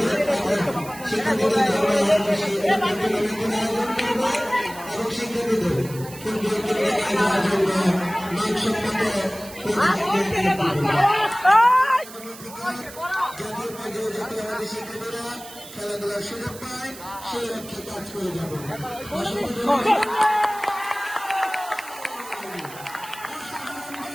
এবং শিক্ষার্থীদের আয়োজন করবে এবং শিক্ষার্থীদের ফুটবল খেলার জন্য মানসম্মত শিক্ষার্থীরা খেলাধুলার সুযোগ পায় সেই লক্ষ্যে কাজ করে যাবে।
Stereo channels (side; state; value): right; noise; hiss, 16 dB below the sound